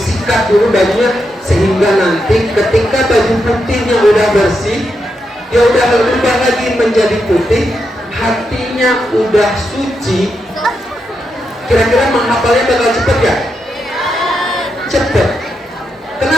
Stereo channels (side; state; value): both; normal; correlation 0.84